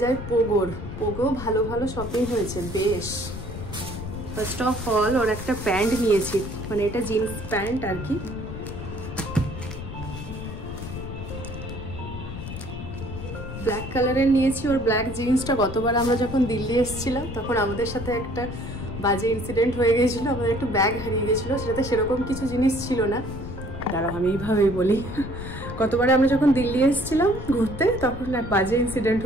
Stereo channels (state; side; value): noise; left; rumble, 9 dB below the sound